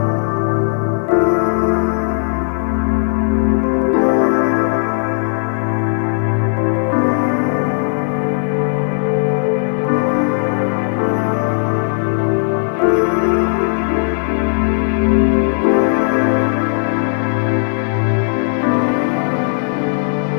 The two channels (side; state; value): right; silent; 56 dB below the other